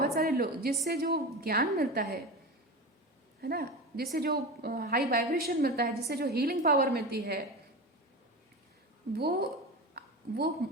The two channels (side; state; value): both; normal; correlation 0.26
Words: सारे लोग, जिससे जो ज्ञान मिलता है ना, जिससे जो हाई वाइब्रेशन मिलता है, जिससे जो हीलिंग पावर मिलती है, वो